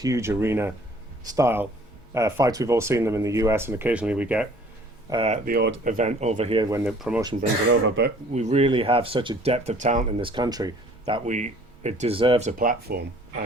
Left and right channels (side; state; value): both; normal; correlation 0.54